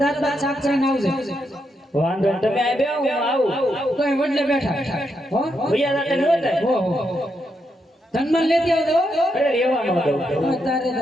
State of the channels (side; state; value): both; normal; correlation 0.81